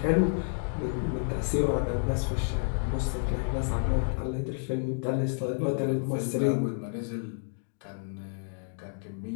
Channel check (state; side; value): silent; right; digital silence